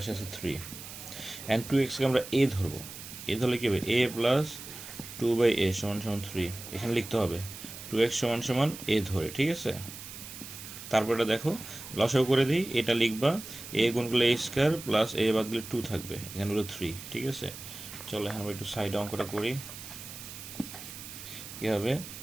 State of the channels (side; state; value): right; noise; hiss, 12 dB below the sound